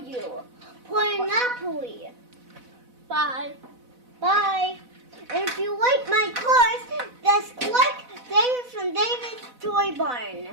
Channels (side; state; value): left; late; 4.0 ms